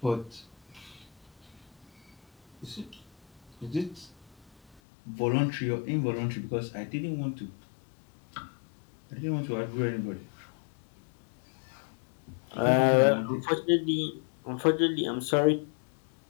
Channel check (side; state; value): right; drops out; at 4.8 s